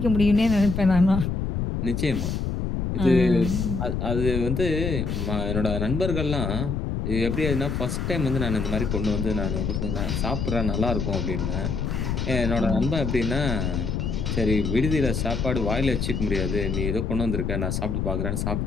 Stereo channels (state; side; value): noise; left; rumble, 1 dB below the sound